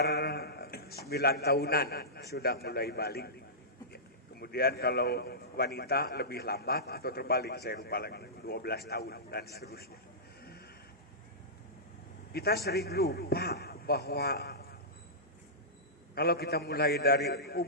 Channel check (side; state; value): both; normal; correlation -0.17